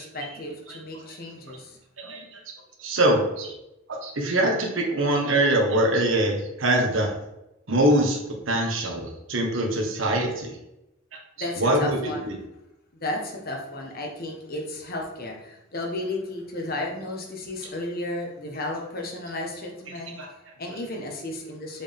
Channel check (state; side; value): normal; both; correlation 0.19